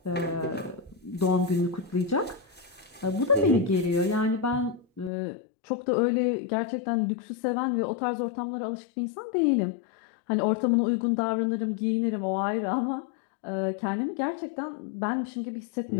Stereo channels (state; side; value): drops out; right; at 5.1 s